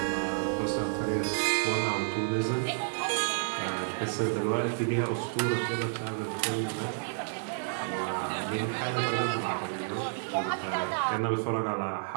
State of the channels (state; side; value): silent; left; 58 dB below the other